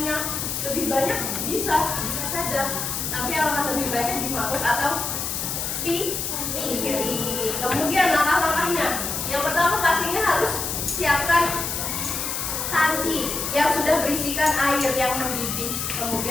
lebih banyak bisa saja. Tapi alangkah lebih baiknya di mangkuk atau piring. Kemudian langkah-langkahnya. Yang pertama pastinya harus siapkan panci yang sudah berisikan air yang mendidih.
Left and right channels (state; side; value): noise; left; hiss, 3 dB below the sound